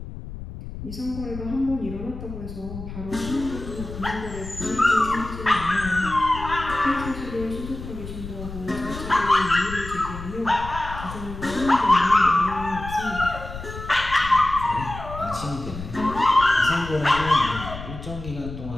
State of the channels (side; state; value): left; noise; rumble, 10 dB below the sound